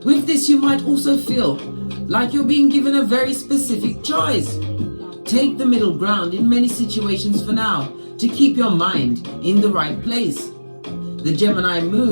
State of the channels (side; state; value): both; inverted; correlation -1.00